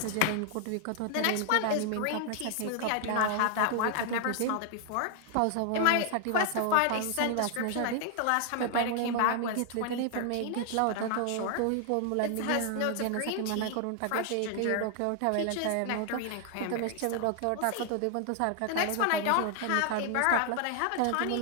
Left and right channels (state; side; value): different; both; correlation 0.00